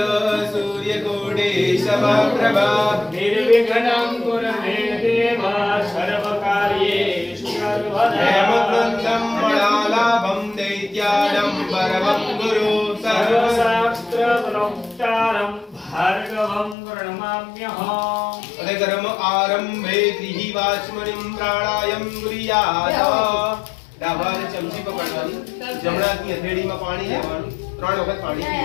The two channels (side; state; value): right; drops out; at 16.8 s